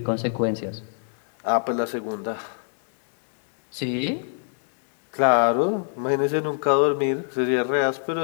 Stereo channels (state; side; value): silent; right; 62 dB below the other